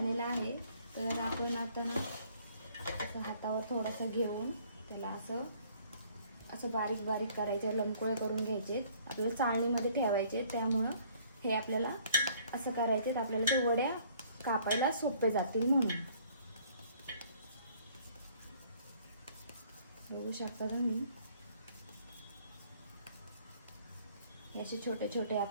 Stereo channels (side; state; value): both; inverted; correlation -0.59